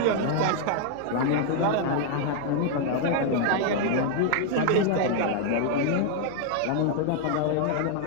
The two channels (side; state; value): both; different; correlation 0.00